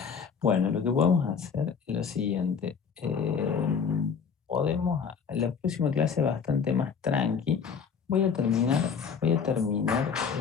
Bueno, lo que podemos hacer es lo siguiente. La próxima clase bastante más tranqui. Voy a terminar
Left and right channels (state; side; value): quieter; right; 6.4 dB